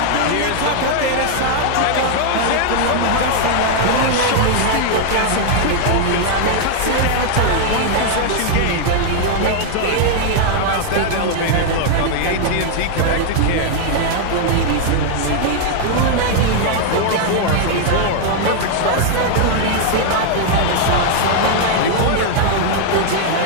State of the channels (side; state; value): both; different; correlation 0.00